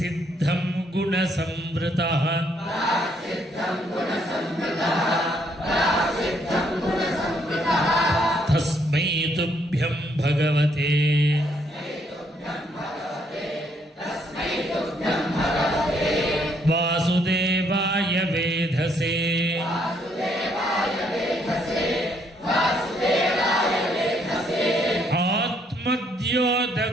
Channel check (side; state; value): both; normal; correlation 0.70